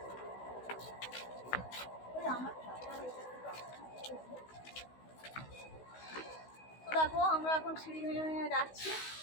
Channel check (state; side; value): late; right; 16 ms